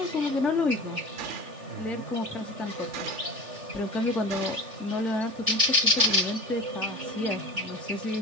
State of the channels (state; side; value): late; left; 3.4 ms